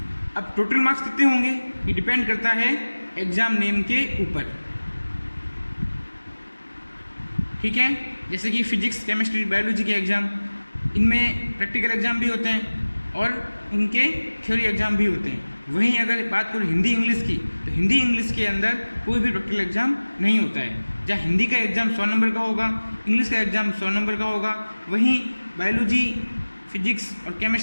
अब टोटल मार्क्स कितने होंगे ये डिपेंड करता है एग्ज़ाम नेम के ऊपर, ठीक है। जैसे कि फिजिक्स, केमिस्ट्री, बायोलॉजी के एग्ज़ाम, इनमें प्रैक्टिकल एग्ज़ाम भी होते हैं और उनके थ्योरी एग्ज़ाम भी होते हैं। वहीं अगर बात करूँ हिंदी इंग्लिश की, तो हिंदी इंग्लिश के अंदर कोई भी प्रैक्टिकल एग्ज़ाम नहीं होता है। जहाँ हिंदी का एग्ज़ाम 100 नंबर का होगा, इंग्लिश का एग्ज़ाम 100 नंबर का होगा, वहीं बायोलॉजी, फिजिक्स और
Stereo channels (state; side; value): inverted; both; correlation -1.00